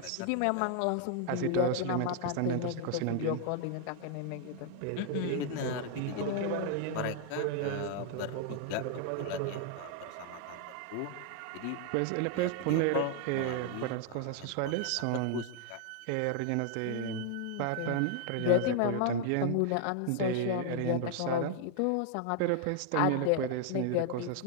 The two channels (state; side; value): different; both; correlation 0.00